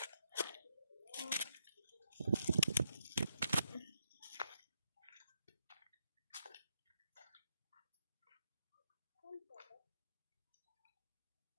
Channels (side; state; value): both; inverted; correlation -0.81